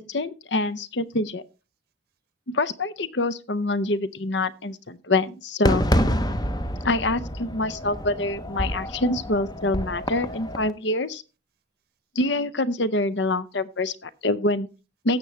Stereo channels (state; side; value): normal; both; correlation 0.28